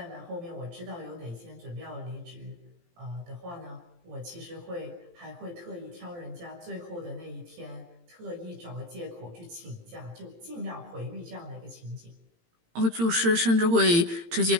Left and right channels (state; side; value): late; left; 18 ms